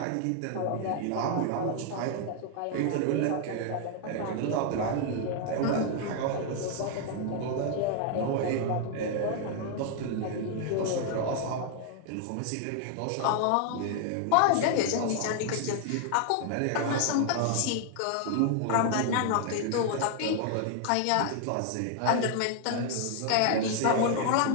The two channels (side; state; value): both; different; correlation 0.00